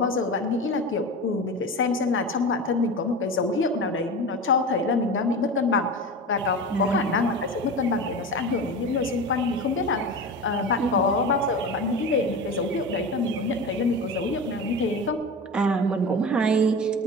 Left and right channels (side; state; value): both; normal; correlation 0.28